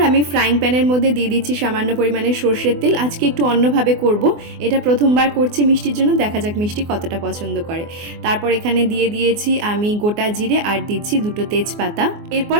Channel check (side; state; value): left; late; 24 ms